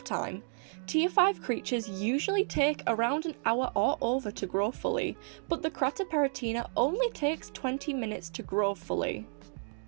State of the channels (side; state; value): left; silent; 57 dB below the other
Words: time. Tier 5 creatures usually take around an hour or over to grow fully, but the Kratoparatina only takes 20 minutes to grow fully.